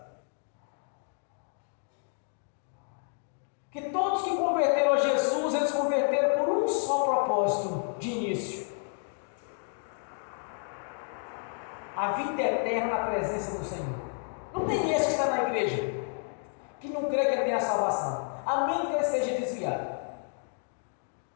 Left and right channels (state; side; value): silent; right; 57 dB below the other